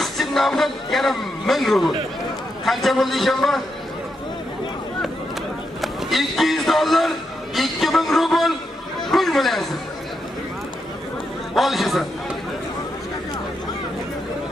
nomidan yana 1000 rubl. Qancha bo'ldi ishonma? $200, 2000 rubl pul bo'laysiz. Olishasan.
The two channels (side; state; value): both; normal; correlation 0.83